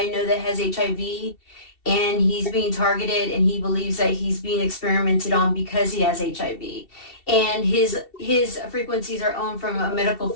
know that has HIV, and he's being targeted, and he believes that he's being experimented on because he has HIV. And his frequencies are owned from a medical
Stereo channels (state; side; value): late; right; 2.7 ms